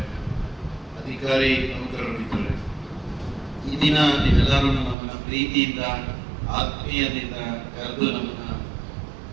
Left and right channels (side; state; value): left; drops out; at 5.0 s